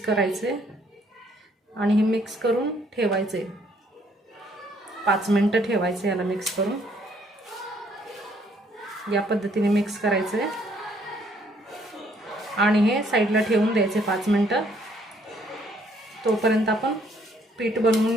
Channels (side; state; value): both; normal; correlation 0.66